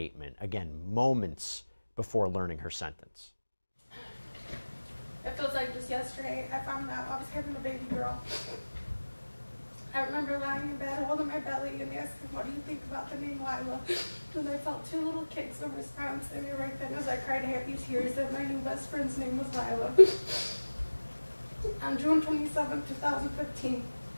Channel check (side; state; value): both; inverted; correlation -1.00